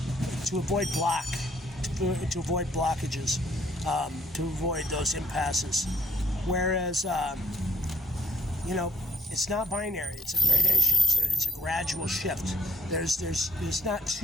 blockages, to avoid those impasses. Whereas, it's not binary. It's a gradation. It's a gradual shift. There's not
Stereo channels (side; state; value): both; normal; correlation 0.67